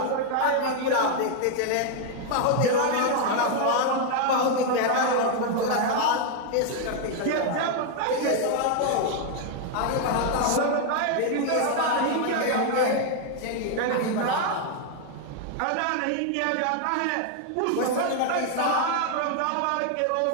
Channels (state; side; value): different; both; correlation 0.00